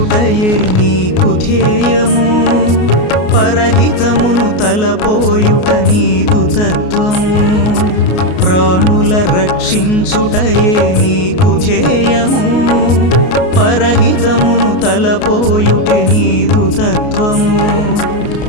నీకు ధ్యేయము పరహితమును తలపోయుట నీదు తత్వము ప్రాణుల రక్షించుటయే నీకు ధ్యేయము పరహితమును తలపోయుటే నీదు తత్వము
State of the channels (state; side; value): late; right; 33 ms